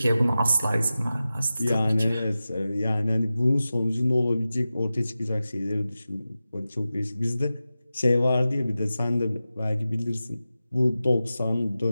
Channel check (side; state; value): both; inverted; correlation -0.94